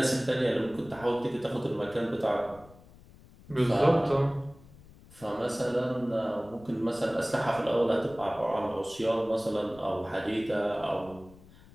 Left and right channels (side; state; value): left; noise; rumble, 23 dB below the sound